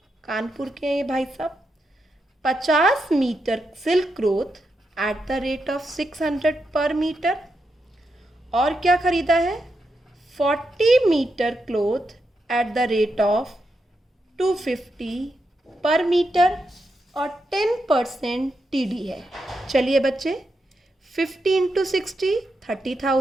कानपुर के हैं ये भाई साहब। 50 metre silk cloth at the rate of 600 per metre. और क्या खरीदा है? 40 metre cloth at the rate of 250 per metre और 10% TD है। चलिए बच्चे, 50 into 60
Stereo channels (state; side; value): normal; both; correlation 0.85